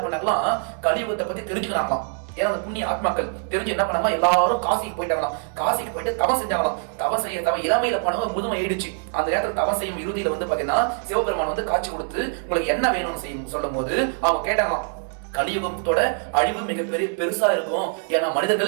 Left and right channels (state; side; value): silent; left; 59 dB below the other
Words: பண்ணாங்களாம், கலியுகத்தை பத்தி தெரிஞ்சுக்கிறாங்களாம். ஏன்னா அந்த புண்ணிய ஆத்மாக்கள் தெரிஞ்சு என்ன பண்ணாங்களா, எல்லாரும் காசிக்கு போயிட்டாங்களாம். காசிக்கு போயிட்டு தவம் செஞ்சாங்களாம். தவம் இளமையில போனவங்க முதுமை ஆயிடுச்சு. அந்த நேரத்தில் தவம் செய்யும் இறுதியில வந்து பாத்தீங்கன்னா சிவபெருமான் வந்து காட்சி கொடுத்து உங்களுக்கு என்ன வேணும்னு செய்யும் சொல்லும் போது அவங்க கேட்டாங்களாம், கலியுகத்தோட அழிவு மிகப்பெரிய பெருசா இருக்கும். ஏன்னா